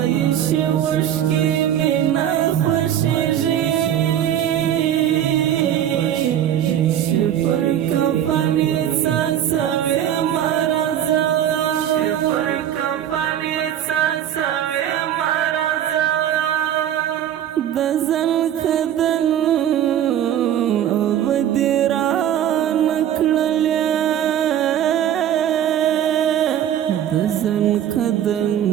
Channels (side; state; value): left; quieter; 10.6 dB